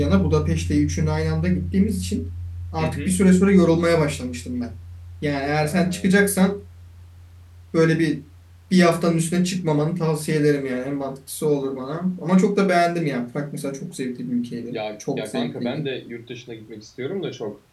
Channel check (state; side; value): identical; both; correlation 1.00